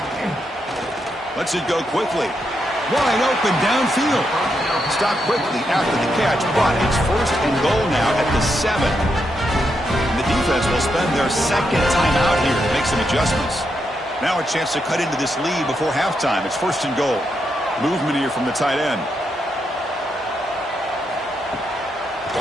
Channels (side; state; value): both; normal; correlation 0.82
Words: Lets it go quickly. Wide open downfield. Stop quickly after the catch, but it's first and goal now at the 7. And the defense will spend their second timeout here to make some adjustments. Now a chance to cut into this lead before halftime. It's first and goal. Movement here from the tight end.